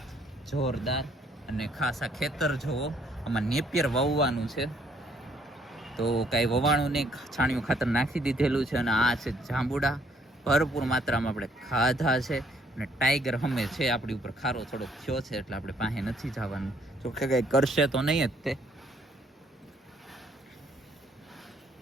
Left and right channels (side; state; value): both; normal; correlation 0.67